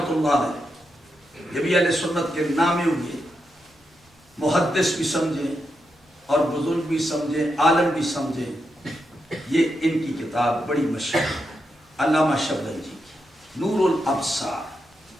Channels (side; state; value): both; normal; correlation 0.85